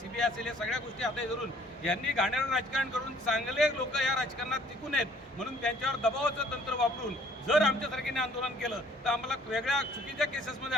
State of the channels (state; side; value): normal; both; correlation 0.57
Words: असेल, या सगळ्या गोष्टी हाताशी धरून यांनी घाणेरडं राजकारण करून चांगले लोक या राजकारणात टिकून आहेत. म्हणून त्यांच्यावर दबावाचं तंत्र वापरून जर आमच्यासारख्याने आंदोलन केलं तर आम्हाला वेगळ्या चुकीच्या केसेसमध्ये